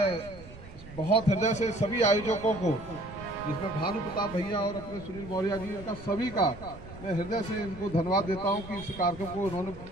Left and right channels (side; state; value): right; noise; rumble, 17 dB below the sound